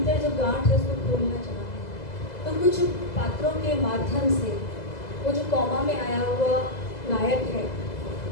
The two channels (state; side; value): late; right; 2.0 ms